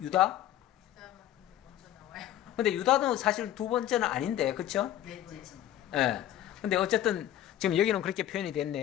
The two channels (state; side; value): quieter; right; 12.3 dB